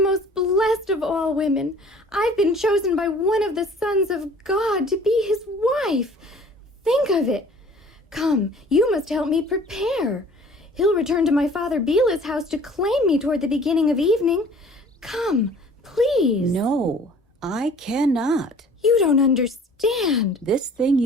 most blessed blessed of all women. I've been chosen by one of the sons of God to be his wife. Think of it. Come, you must help me prepare. He'll return to my father Bilah's house to claim me toward the beginning of evening. Come, please. No, I cannot. You don't understand. This thing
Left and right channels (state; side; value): normal; both; correlation 0.50